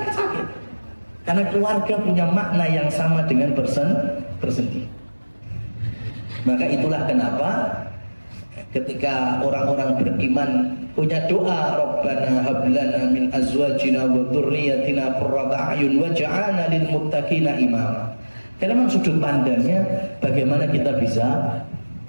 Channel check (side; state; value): both; inverted; correlation -1.00